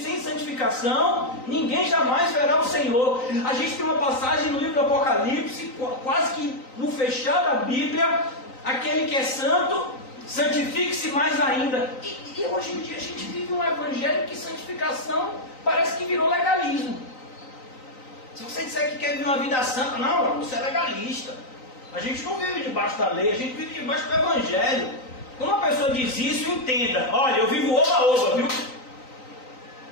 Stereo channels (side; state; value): right; late; 3.9 ms